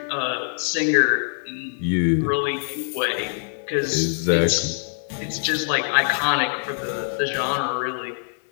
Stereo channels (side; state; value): right; silent; digital silence